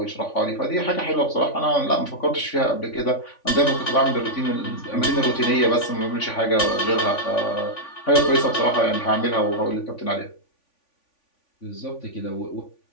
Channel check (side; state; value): right; late; 3.5 ms